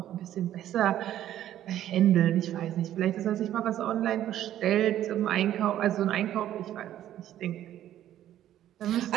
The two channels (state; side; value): quieter; left; 12.1 dB